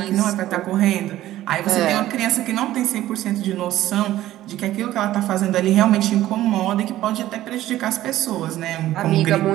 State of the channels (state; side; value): quieter; left; 14.3 dB